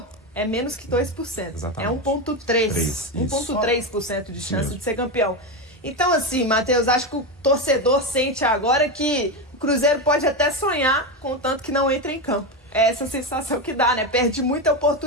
é menos que 2%. Exatamente. É 1,3% de chance de ser campeão. Então, assim, Matheus, acho que o torcedor sente agora que o Cruzeiro pode até sonhar, contanto que não entre em campo. É essa sensação que dá, né? Perde muita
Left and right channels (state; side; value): normal; both; correlation 0.14